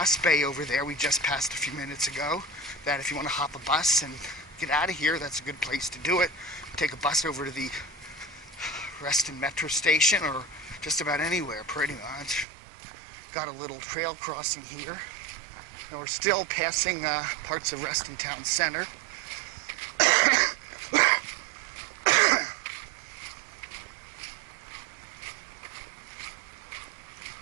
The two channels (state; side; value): drops out; left; at 12.5 s